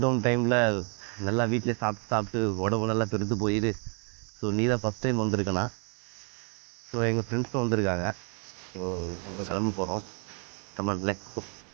டைமில் நல்லா வீட்டிலே சாப்பிட்டு சாப்பிட்டு உடம்பு நல்லா பெருத்து போயிடு. ஸோ நீ தான் ஃபஸ்ட் டைம் வந்திருக்கேண்ணா. ஸோ எங்கள் ஃப்ரெண்ட்ஸும் வந்திருக்காங்க. ஸோ நம்ம கிளம்ப போகிறோம். தமிழ்ல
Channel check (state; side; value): quieter; left; 38.7 dB